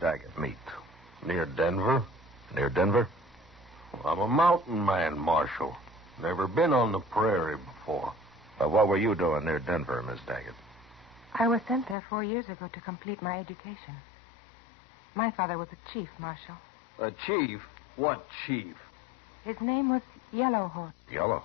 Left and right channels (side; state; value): right; drops out; at 12.0 s